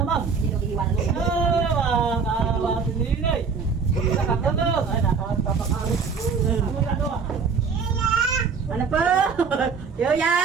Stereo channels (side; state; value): left; quieter; 5.5 dB